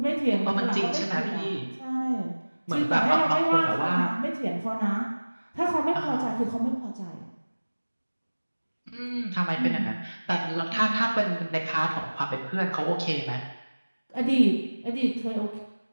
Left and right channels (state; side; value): inverted; both; correlation -1.00